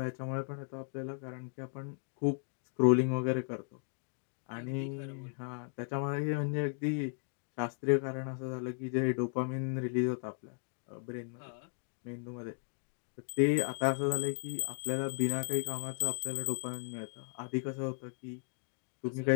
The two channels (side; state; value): right; silent; digital silence